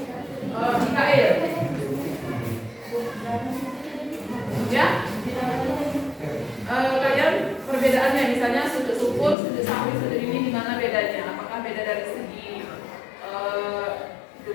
Mikael. Ya, kalian perbedaannya misalnya sujud syukur, sujud sahwi, sujud ini di mana bedanya? Apakah beda dari segi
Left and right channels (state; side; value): drops out; right; at 9.3 s